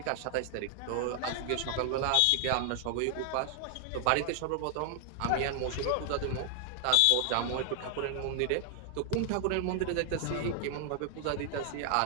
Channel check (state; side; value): different; both; correlation 0.00